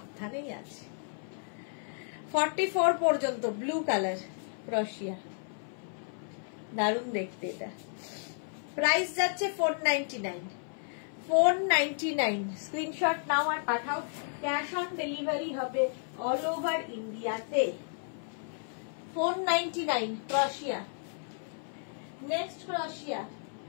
আছে। 44 পর্যন্ত ব্লু কালার ক্রোশিয়া, দারুণ দেখতে এটা। প্রাইস যাচ্ছে 499, 499। স্ক্রিনশট নাও আর পাঠাও। ক্যাশ অন ডেলিভারি হবে অল ওভার ইন্ডিয়াতে। 499 ক্রোশিয়া। নেক্সট ক্রোশিয়া।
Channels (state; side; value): silent; right; 56 dB below the other